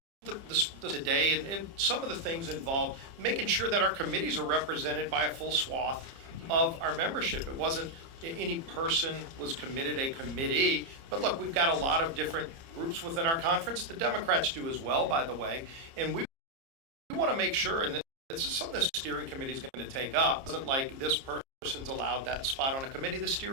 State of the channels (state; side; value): late; left; 30 ms